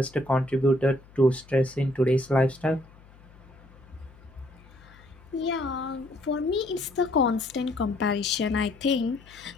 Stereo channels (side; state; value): left; noise; hum, 24 dB below the sound